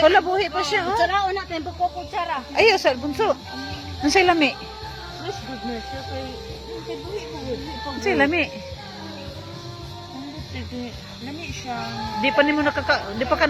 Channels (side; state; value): both; identical; correlation 1.00